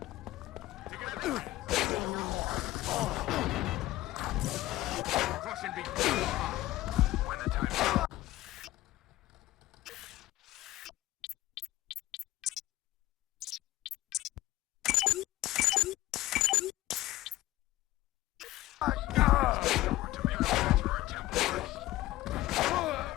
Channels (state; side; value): quieter; right; 16.0 dB